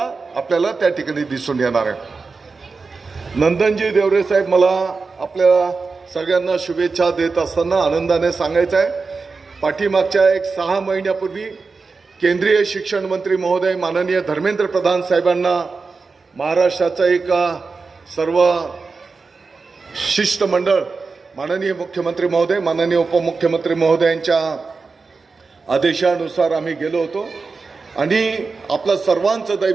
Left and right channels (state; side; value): quieter; left; 4.4 dB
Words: आपल्याला त्या ठिकाणी दिसून येणार आहे। नंदनजी देवरे साहेब, मला आपल्या सगळ्यांना शुभेच्छा देत असताना आनंदाने सांगायचं आहे, पाठीमागच्या 6 महिन्यापूर्वी केंद्रीय शिक्षण मंत्री महोदय माननीय धर्मेंद्र प्रधान साहेबांना महाराष्ट्राचा एक सर्व शिष्टमंडळ माननीय मुख्यमंत्री महोदय माननीय उपमुख्यमंत्री महोदयांच्या आदेशानुसार आम्ही गेलो होतो आणि आपलं सर्वांचं